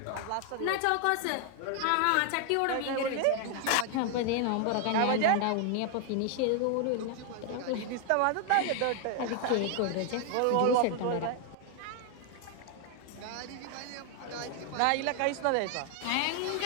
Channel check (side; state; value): both; different; correlation 0.00